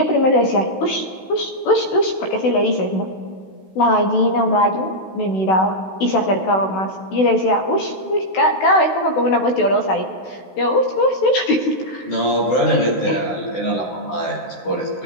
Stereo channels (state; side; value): late; right; 16 ms